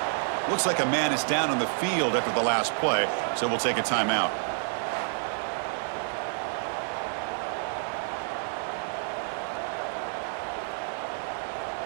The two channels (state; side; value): silent; left; digital silence